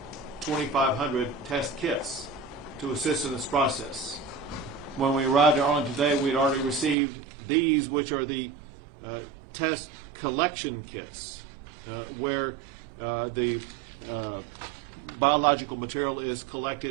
2,500 test kits to assist in this process. When we arrived in Arlington today, we had already received these, which are the test collection kits, where the biological material is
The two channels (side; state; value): left; drops out; at 7.0 s